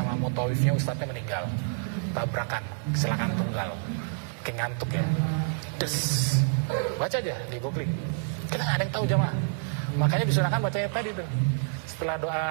mutawifnya ustadznya meninggal, tabrakan, kecelakaan tunggal, kayak ngantuk ya, baca aja di googling, kita nggak ada yang tahu jamaah. Makanya disunahkan bacanya tadi tuh, setelah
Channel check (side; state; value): left; silent; digital silence